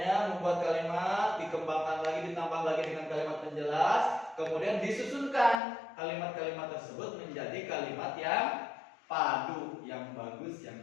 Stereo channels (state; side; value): drops out; right; at 5.6 s